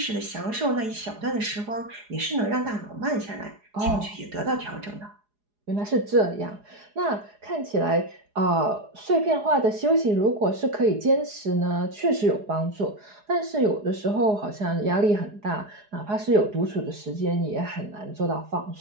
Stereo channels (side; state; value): left; late; 4.8 ms